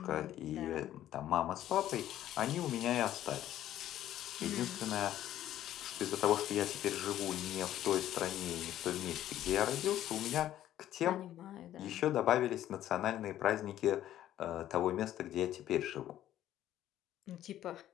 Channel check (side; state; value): right; quieter; 12.5 dB